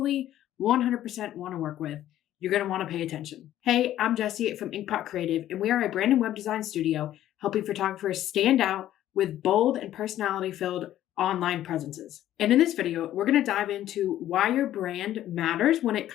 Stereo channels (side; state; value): right; quieter; 12.7 dB